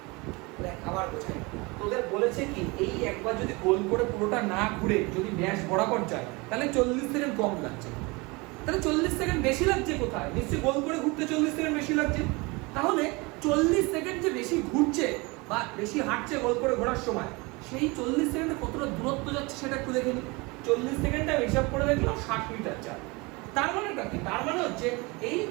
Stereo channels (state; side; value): quieter; left; 25.8 dB